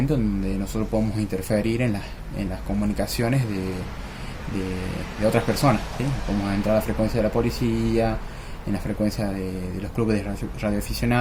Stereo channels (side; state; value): both; identical; correlation 1.00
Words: donde nosotros podemos interferir en las comunicaciones de otras personas, ¿sí? Podemos entrar a la frecuencia de la policía, en la frecuencia de los clubes de